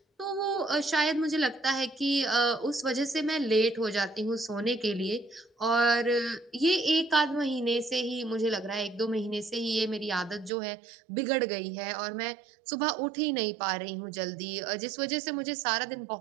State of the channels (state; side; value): drops out; left; at 10.5 s